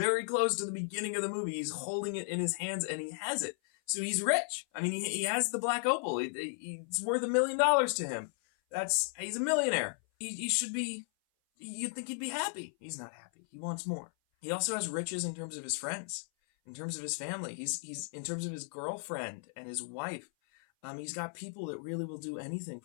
close to the beginning of the movie. He's holding it in his hands and he has it. So he's rich. I mean, he has the Black Opal. It's worth $1 million to him. He's a millionaire. He should be, you'd think he'd be happy. He's not happy. He wants more. He also has riches in terms of his friends, in terms of his family. He's in terms of his girlfriend and his wife. He's got people that really will do anything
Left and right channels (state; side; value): silent; right; 54 dB below the other